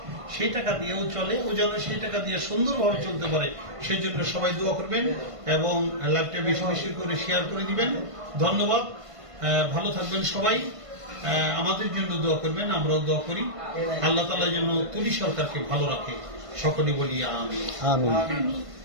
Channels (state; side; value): late; left; 1.5 ms